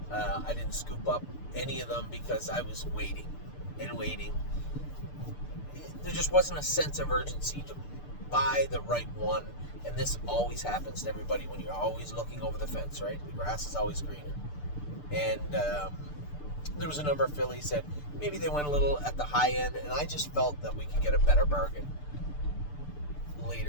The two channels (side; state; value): right; late; 6.8 ms